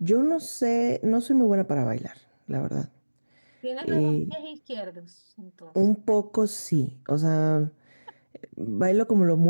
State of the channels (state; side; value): inverted; both; correlation -1.00